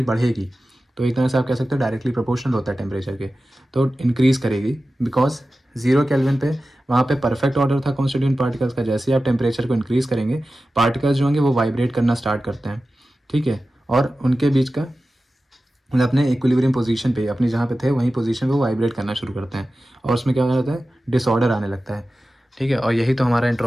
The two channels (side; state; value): both; normal; correlation 0.94